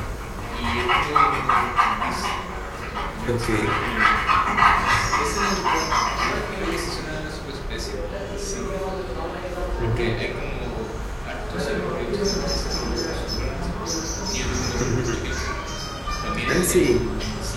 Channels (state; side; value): identical; both; correlation 1.00